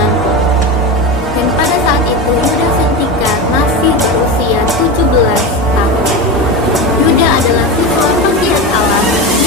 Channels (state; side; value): normal; both; correlation 0.21